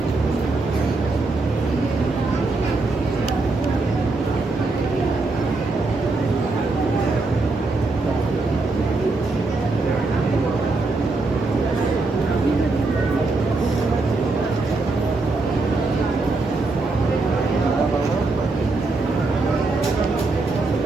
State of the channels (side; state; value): left; quieter; 3.5 dB